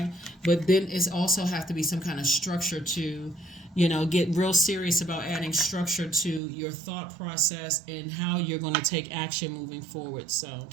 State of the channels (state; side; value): drops out; left; at 6.4 s